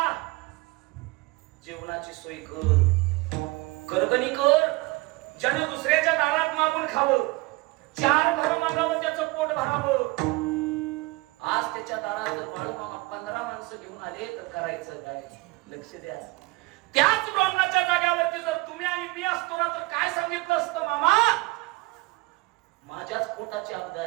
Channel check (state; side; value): quieter; left; 23.2 dB